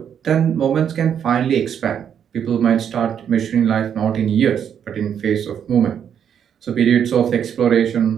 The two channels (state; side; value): quieter; left; 8.5 dB